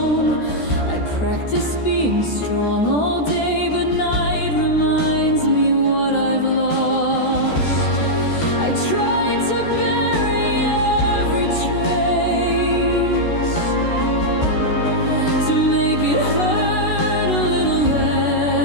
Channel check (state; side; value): late; right; 14 ms